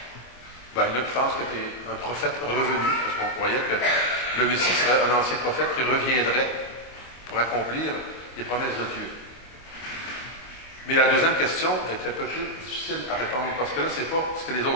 Ben, il y en a qui pensent que tu es un prophète revenu, parce qu'on croyait que le Messie serait un ancien prophète qui reviendrait pour accomplir les promesses de Dieu. Mais la deuxième question est un peu plus difficile à répondre, parce que là, ce n'est pas ce que les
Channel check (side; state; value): right; late; 24 ms